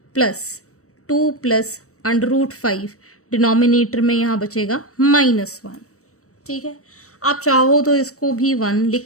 प्लस 2 प्लस √5, डिनोमिनेटर में यहाँ बचेगा -1. ठीक है, आप चाहो तो इसको भी 1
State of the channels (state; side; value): late; right; 0.65 ms